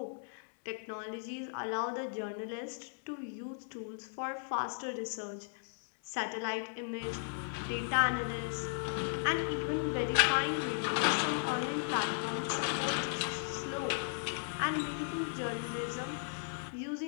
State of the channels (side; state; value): right; silent; 54 dB below the other